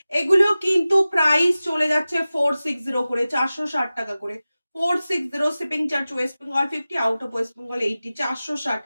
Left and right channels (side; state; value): both; inverted; correlation -0.96